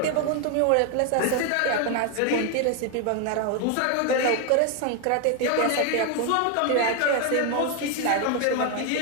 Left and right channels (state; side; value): different; both; correlation 0.01